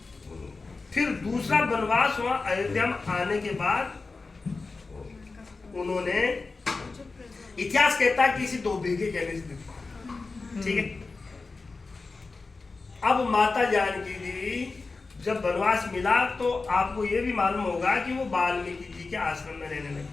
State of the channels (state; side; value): quieter; right; 3.9 dB